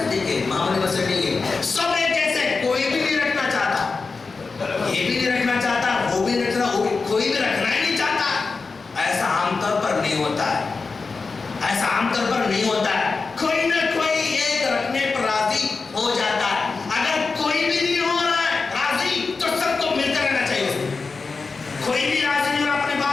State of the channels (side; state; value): right; quieter; 4.4 dB